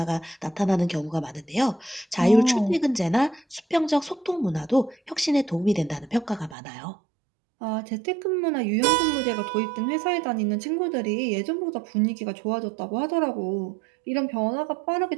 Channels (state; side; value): drops out; left; at 6.6 s